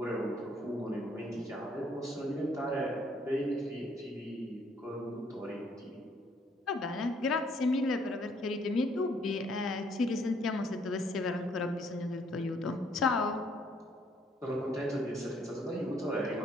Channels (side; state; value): both; normal; correlation 0.66